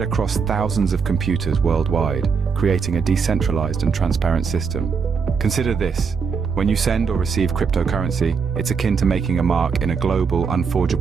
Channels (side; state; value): left; quieter; 5.8 dB